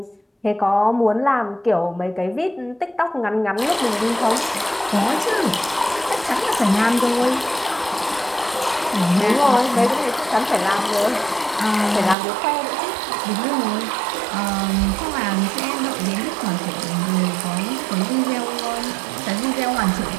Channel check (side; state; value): left; drops out; at 12.2 s